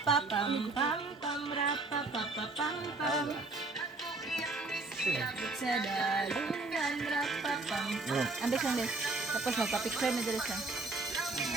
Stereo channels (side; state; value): left; quieter; 3.3 dB